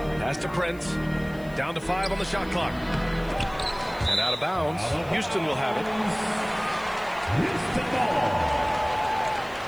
Pass to Prince. Down to 5 on the shot clock. And out of bounds. Houston will have it.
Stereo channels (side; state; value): left; noise; hiss, 25 dB below the sound